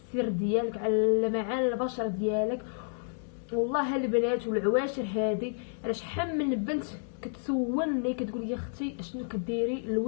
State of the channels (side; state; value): right; silent; digital silence